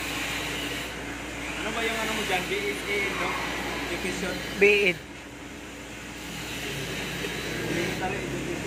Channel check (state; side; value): identical; both; correlation 1.00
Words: Ano ba yung ano mo dyan? BSA, no? Education? BEd. Military